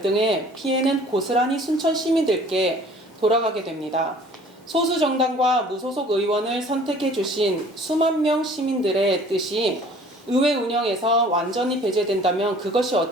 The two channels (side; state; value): both; normal; correlation 0.51